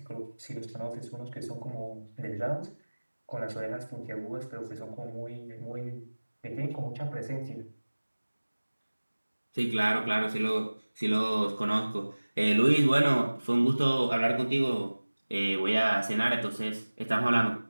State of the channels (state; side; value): inverted; both; correlation -1.00